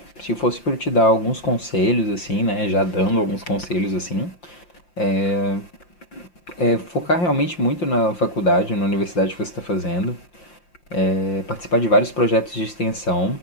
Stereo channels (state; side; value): late; right; 5.7 ms